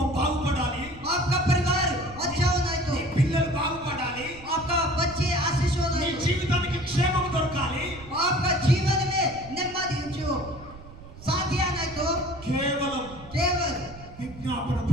బాగుపడాలి. आपका परिवार अच्छा होना है तो నీ పిల్లలు బాగుపడాలి. आपका बच्चे आशीष होना నీ है तो జీవితానికి క్షేమం దొరకాలి. आपका जीवन में नेమ్మది जो साथी आना है तो కేవలం केवल విజ్ఞాపన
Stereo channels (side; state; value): right; noise; rumble, 18 dB below the sound